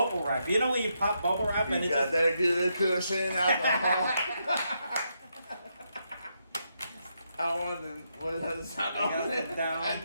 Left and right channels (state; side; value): inverted; both; correlation -0.80